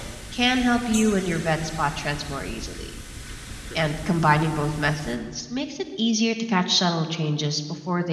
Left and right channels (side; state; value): both; identical; correlation 1.00